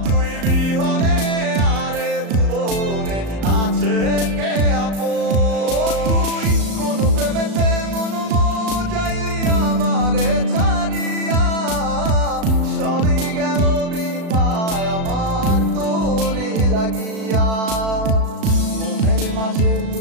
তুই বিহনে আরে ভুবনে আছে কে আপন তুই কোন প্রেমেতে মন মজাইলি আমারে ছাড়িয়া সবই গেল বৃথায় আমার তোরে লাগিয়া মনের মাঝে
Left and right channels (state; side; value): late; left; 36 ms